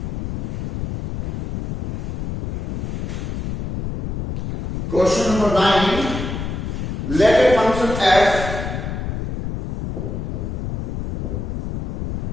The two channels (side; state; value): left; noise; rumble, 4 dB below the sound